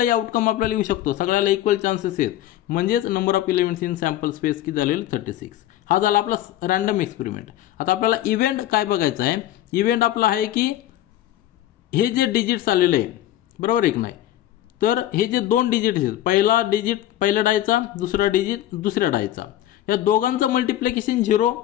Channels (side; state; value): right; quieter; 13.4 dB